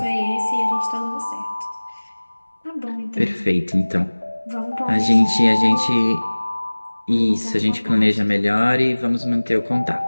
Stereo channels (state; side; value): inverted; both; correlation -1.00